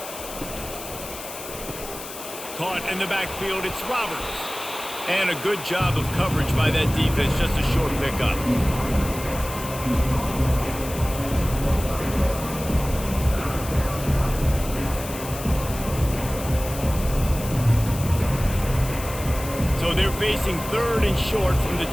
Caught in the backfield, it's Roberts. And a good job of coverage by that defense, just a short pickup. So they're facing 3rd and short from the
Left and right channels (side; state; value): left; noise; hiss, 11 dB below the sound